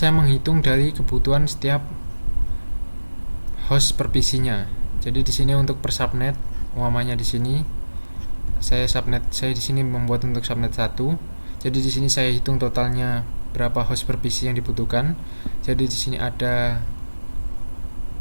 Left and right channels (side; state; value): both; inverted; correlation -1.00